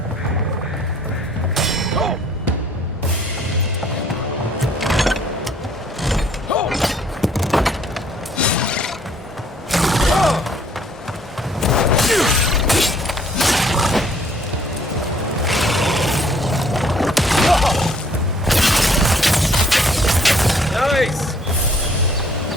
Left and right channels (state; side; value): normal; both; correlation 0.61